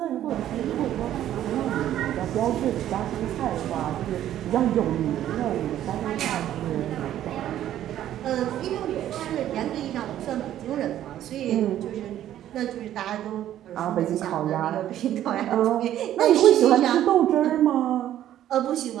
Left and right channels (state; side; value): quieter; left; 12.0 dB